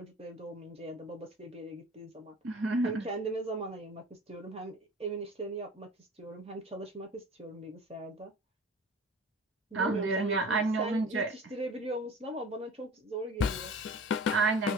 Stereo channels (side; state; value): both; normal; correlation 0.41